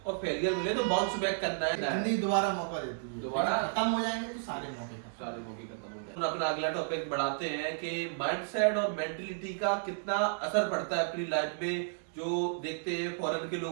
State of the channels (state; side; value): silent; left; digital silence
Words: और फेलियर मिले तो बाउंस बैक करना है। जिंदगी दोबारा मौका देती है, दोबारा खत्म हो जाएंगे तो सारे मौके खत्म। सारे मौके खत्म हो गए। अपना अगला टॉपिक बढ़ाते हैं कि माइंडसेट और मेंटलिटी का कितना असर पड़ता है अपनी लाइफ में। जो देखते हैं फॉरेन के लोग